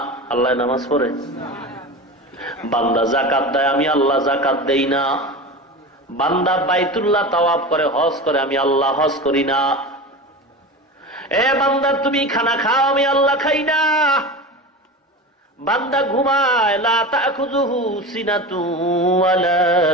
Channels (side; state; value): both; normal; correlation 0.28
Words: আল্লাহ নামাজ পড়ে। বান্দা যাকাত দেয়, আমি আল্লাহ যাকাত দেই না। বান্দা বাইতুল্লাহ তাওয়াফ করে, হজ করে, আমি আল্লাহ হজ করি না। এ বান্দা, তুমি খানা খাও, আমি আল্লাহ খাই না। বান্দা ঘুমায়, লা তাখুযুহু সিনাতু ওয়ালা